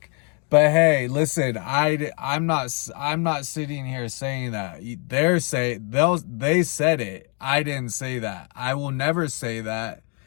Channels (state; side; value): quieter; right; 37.9 dB